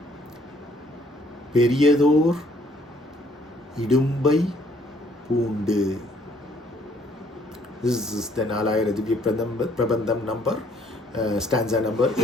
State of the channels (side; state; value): both; normal; correlation 0.63